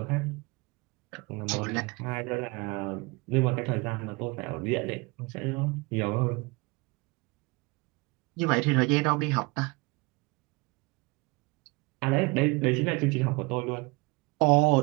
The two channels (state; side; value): quieter; left; 26.5 dB